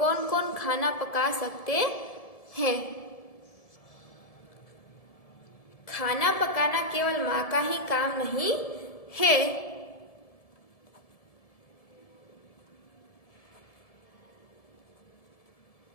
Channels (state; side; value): late; right; 1.7 ms